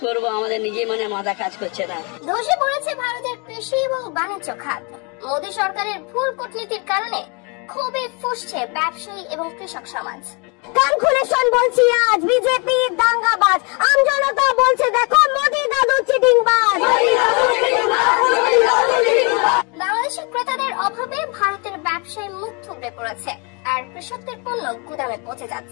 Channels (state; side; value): quieter; right; 32.4 dB